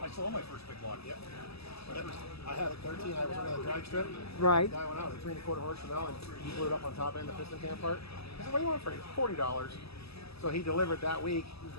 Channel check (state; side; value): late; right; 0.78 ms